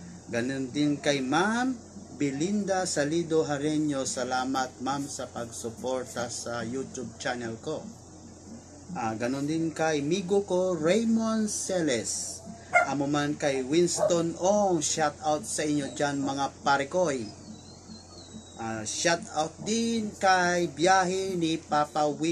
Ganon din kay Ma'am Belinda Salido Hareño. Salamat ma'am sa pagsuporta sa YouTube channel ko. Ganon din kay migo ko Raymond Celes. Amo man kay Winston Ong. Shoutout sa inyo dyan mga pare Koy. Shout out din kay biyahe ni Papa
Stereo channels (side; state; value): both; identical; correlation 1.00